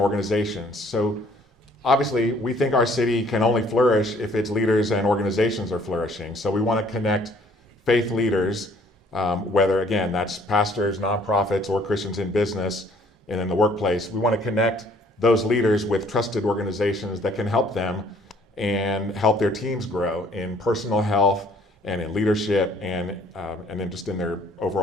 organizations. So obviously, we think our city can only flourish if its leaders and organizations are flourishing. So we want to connect faith leaders, whether, again, that's pastors, nonprofits, or Christians in business and in the workplace. We want to connect those leaders with trusted organizations that can help them and help their teams grow in personal health and in leadership and then just in their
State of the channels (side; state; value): both; normal; correlation 0.60